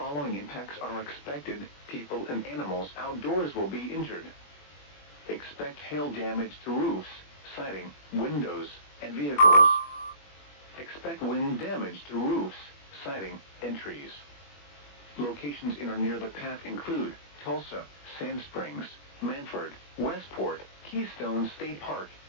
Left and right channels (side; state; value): right; late; 21 ms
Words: impacts are expected. People and animals outdoors will be injured. Expect hail damage to roofs, siding, windows, and vehicles. Expect wind damage to roofs, siding, and trees. Locations in or near the path include Tulsa, Sand Springs, Manford, Westport, Keystone State Park,